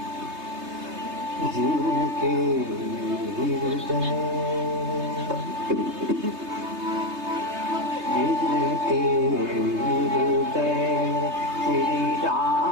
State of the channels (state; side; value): late; left; 3.3 ms